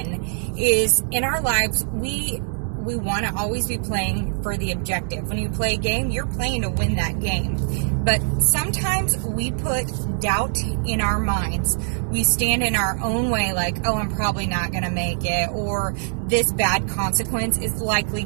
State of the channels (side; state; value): left; silent; 59 dB below the other